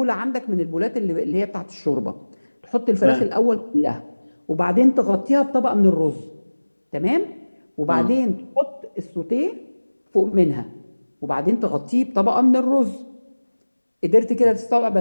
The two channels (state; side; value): inverted; both; correlation -1.00